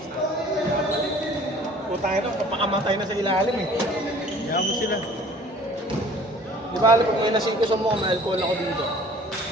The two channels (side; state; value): both; normal; correlation 0.50